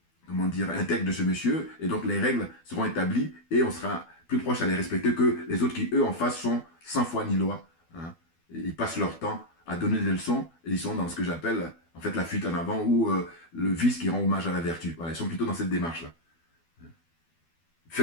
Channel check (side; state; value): right; late; 12 ms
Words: comment dire, intègre de ce monsieur. Et donc, les règles seront établies et on sera plus proche à les respecter que les autres qui, eux, en face, sont sans foi ni loi. Hein. Ils passent leur temps à donner des leçons et ils sont dans ce que j'appelle, en fait, la fuite en avant ou le vice qui rend hommage à la vertu. Voilà, ils sont plutôt dans cette démarche-là.